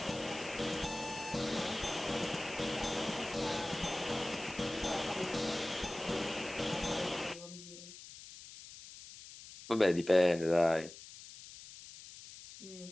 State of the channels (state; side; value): noise; left; hiss, 15 dB below the sound